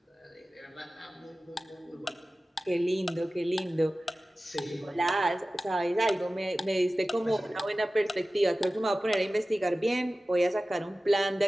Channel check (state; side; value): normal; both; correlation 0.96